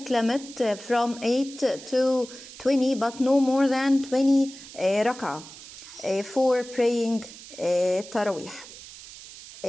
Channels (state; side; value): noise; right; hiss, 16 dB below the sound